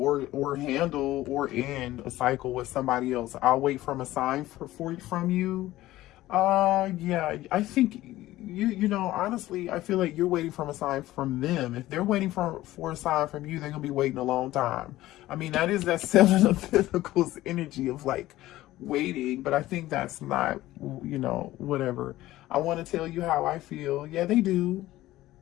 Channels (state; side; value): quieter; right; 16.0 dB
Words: handle or end a cycle with somebody else. I'll wait from a sign from you. Yeah, I think you know, honestly, I feel like you're waiting from a sign from them. If they're waiting for a sign from you, they're gonna be waiting a long time. I mean, that is that Seven of Pentacles energy of like waiting, but I think that's not, you know, whatever. I want to tell you how I feel. Yeah, they do